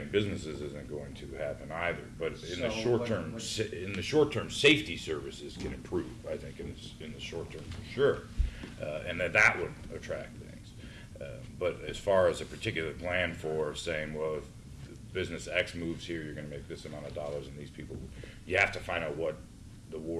businesses isn't going to happen either. But in the So short term, safety services can improve. I think in the short term for sure, and that would attract things. But as far as a particular plan for saying, well, if business X moves here, you're going to make this amount of dollars, and these people, you have to find out what the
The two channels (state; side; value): identical; both; correlation 1.00